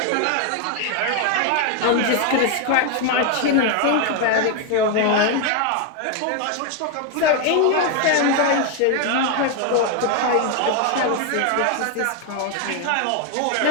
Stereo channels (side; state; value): both; different; correlation 0.01